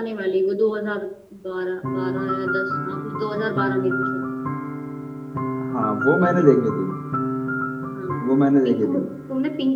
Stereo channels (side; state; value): both; identical; correlation 1.00